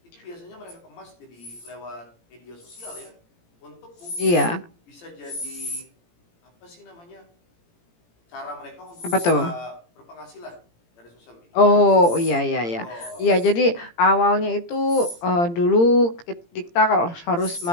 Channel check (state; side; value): late; right; 17 ms